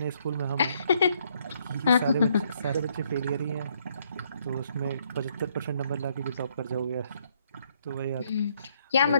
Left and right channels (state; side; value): inverted; both; correlation -0.70